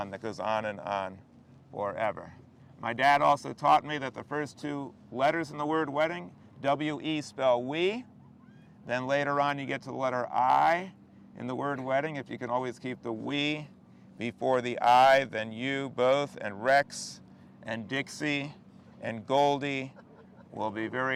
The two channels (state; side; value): identical; both; correlation 1.00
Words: that goes on forever. My dad also taught me that the first 2 letters in the word wedding, W-E, spell we. Then later on you get to the letter I in the word wedding. If you can always keep the we before the I, then you both and Rex and Dixie and Goldie will be